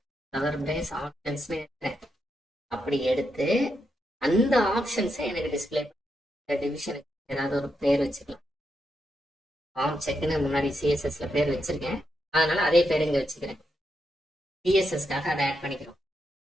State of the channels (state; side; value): normal; both; correlation 0.83